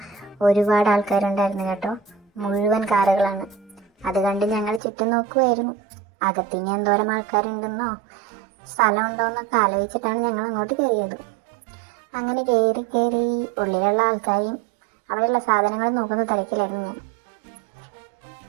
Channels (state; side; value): drops out; left; at 4.8 s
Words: ഒരുപാട് ആൾക്കാരുണ്ടായിരുന്നു കേട്ടോ. മുഴുവൻ കാറുകളാണ്. അത് കണ്ട് ഞങ്ങൾ ചുറ്റും നോക്കുമായിരുന്നു. അകത്തിനി എന്തോരം ആൾക്കാരുണ്ടെന്നോ സ്ഥലമുണ്ടോ എന്നൊക്കെ ആലോചിച്ചിട്ടാണ് ഞങ്ങൾ അങ്ങോട്ട് കയറിയത്. അങ്ങനെ കയറി ഉള്ളിലുള്ള ആൾക്കാരെയും അവിടെയുള്ള സാധനങ്ങൾ നോക്കുന്ന തിരക്കിലായിരുന്നു ഞാൻ.